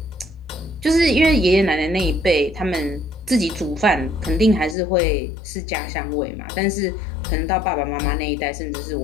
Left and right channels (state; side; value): drops out; right; at 4.8 s